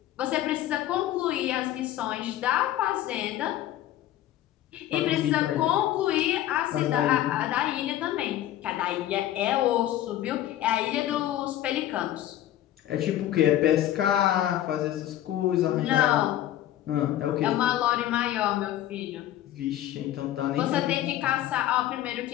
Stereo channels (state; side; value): quieter; right; 13.0 dB